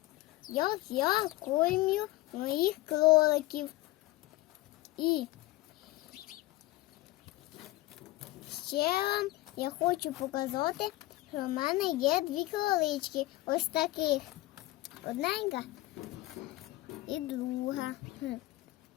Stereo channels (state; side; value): quieter; right; 18.4 dB